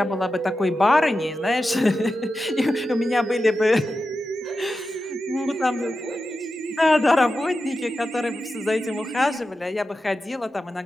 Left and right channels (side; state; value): both; normal; correlation 0.91